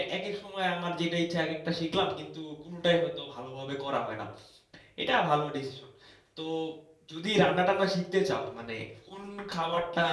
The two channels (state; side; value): identical; both; correlation 1.00